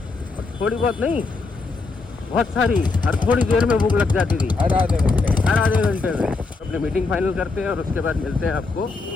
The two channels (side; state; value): right; quieter; 3.9 dB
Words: थोड़ी बहुत नहीं, बहुत सारी, हर थोड़ी देर में भूख लग जाती थी, हर आधे घंटे में। अपनी मीटिंग फाइनल करते हैं और उसके बाद मिलते हैं आपको।